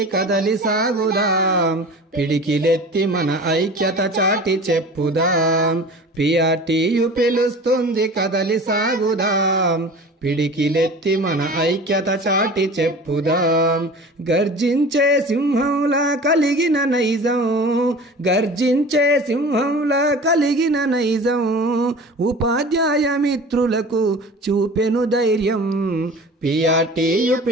కదలి సాగుదాం పిడికిలెత్తి మన ఐక్యత చాటి చెప్పుదాం పిఆర్టీయు పిలుస్తుంది కదలి సాగుదాం పిడికిలెత్తి మన ఐక్యత చాటి చెప్పుదాం గర్జించే సింహంలా కలిగిన నైజం గర్జించే సింహంలా కలిగిన నైజం ఉపాధ్యాయ మిత్రులకు చూపెను ధైర్యం పిఆర్టీయు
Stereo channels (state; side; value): normal; both; correlation 0.39